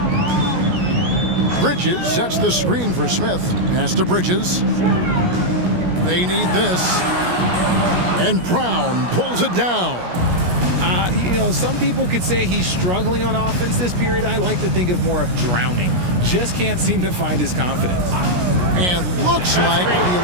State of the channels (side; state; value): left; late; 17 ms